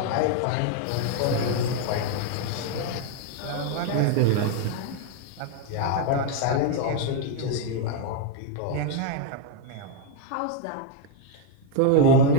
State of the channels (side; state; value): both; different; correlation 0.01